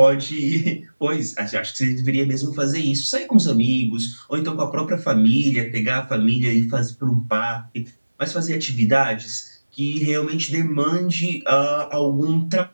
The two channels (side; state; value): both; inverted; correlation -1.00